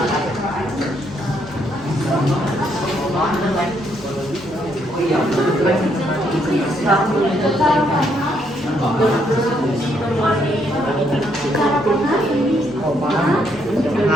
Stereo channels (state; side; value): normal; both; correlation 0.73